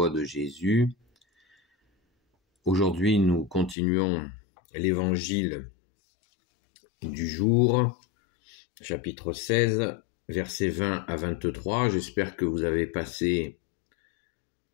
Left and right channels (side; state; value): right; drops out; at 3.8 s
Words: de Jésus. Aujourd'hui, nous continuons l'évangile du jour, chapitre 16, versets 20 à 23. J'espère que vous avez passé